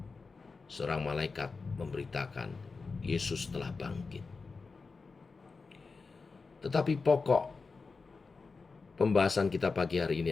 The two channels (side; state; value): right; quieter; 4.4 dB